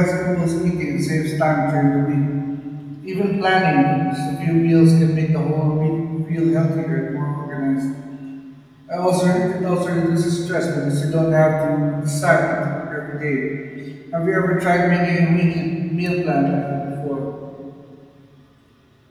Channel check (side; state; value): both; identical; correlation 1.00